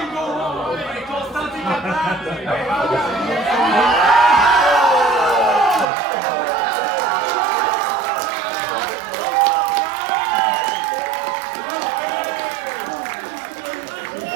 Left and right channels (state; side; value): drops out; left; at 5.9 s